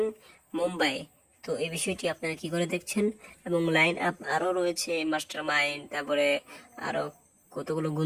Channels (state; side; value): identical; both; correlation 1.00